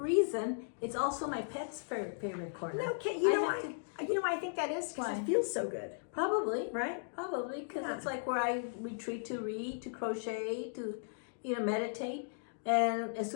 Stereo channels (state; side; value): silent; right; digital silence